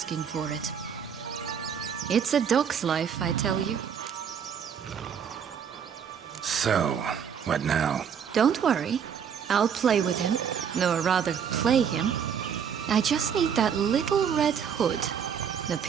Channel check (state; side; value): quieter; left; 7.6 dB